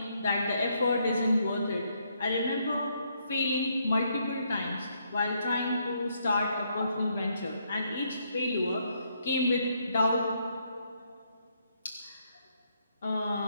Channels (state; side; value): inverted; both; correlation -0.74